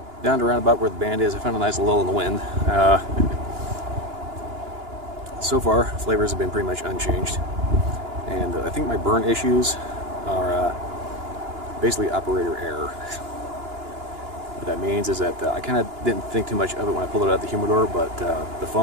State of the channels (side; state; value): left; late; 2.9 ms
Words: down to around about where the band is, I found a nice lull in the wind. So far, flavors have been pretty much unchanged, and I think my burn issues are basically operator error. What that means is that I kind of didn't think too much of it when I pulled it out of the humidor, but the